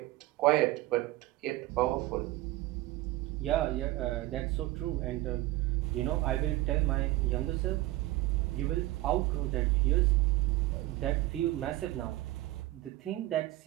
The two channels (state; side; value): quieter; left; 17.6 dB